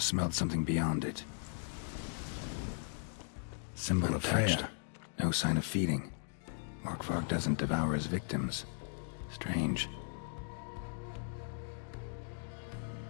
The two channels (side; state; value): right; silent; digital silence